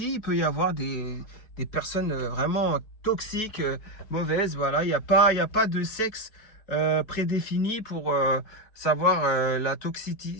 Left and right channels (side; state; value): right; late; 4.5 ms